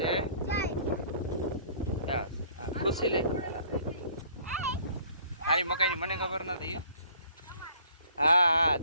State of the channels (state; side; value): inverted; both; correlation -0.56